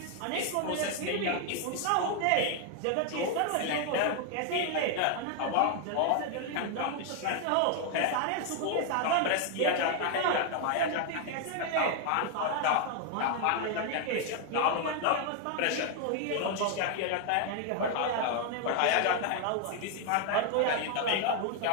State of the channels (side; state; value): both; different; correlation 0.00